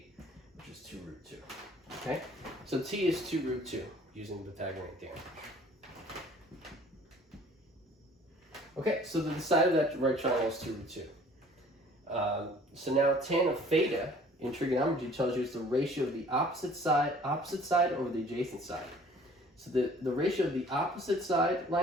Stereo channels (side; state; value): both; normal; correlation 0.53